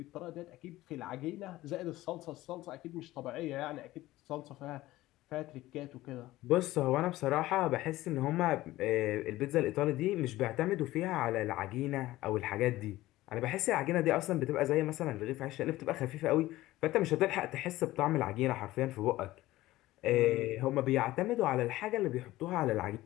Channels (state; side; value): quieter; right; 16.8 dB